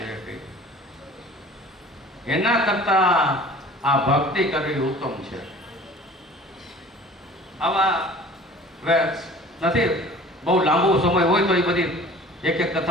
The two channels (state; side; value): normal; both; correlation 0.45